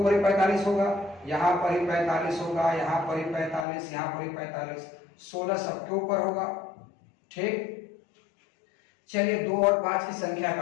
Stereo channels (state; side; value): drops out; right; at 3.7 s